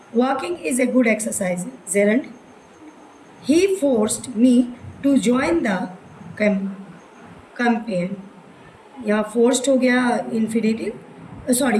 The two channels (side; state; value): both; identical; correlation 1.00